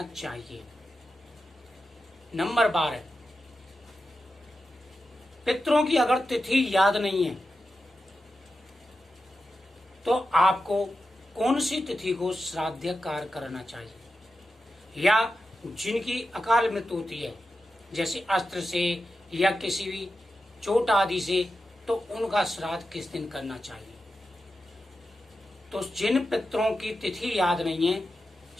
चाहिए। नंबर 12, पितरों की अगर तिथि याद नहीं है तो आपको कौन सी तिथि को श्राद्ध कार्य करना चाहिए? या जिनकी अकाल मृत्यु होती है जैसे अस्त्र से या किसी भी चोट आदि से, तो उनका श्राद्ध किस दिन करना चाहिए? तो जिन पितरों की तिथि याद नहीं है,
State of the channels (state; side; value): normal; both; correlation 0.90